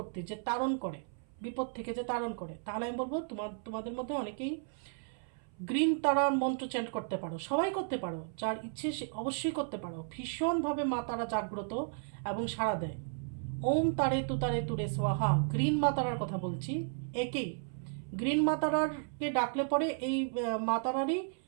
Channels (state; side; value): silent; left; 55 dB below the other